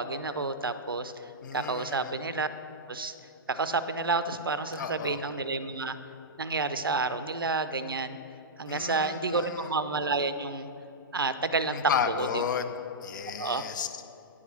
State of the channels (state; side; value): normal; both; correlation -0.09